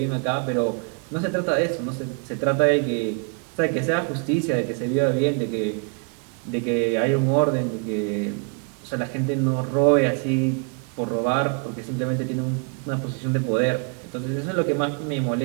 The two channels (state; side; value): quieter; left; 38.1 dB